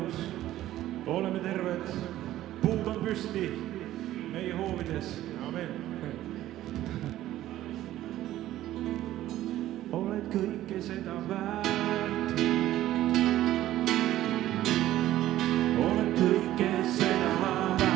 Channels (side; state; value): left; quieter; 14.0 dB